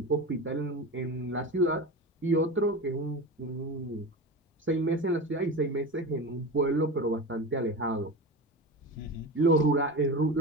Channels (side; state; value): both; normal; correlation 0.27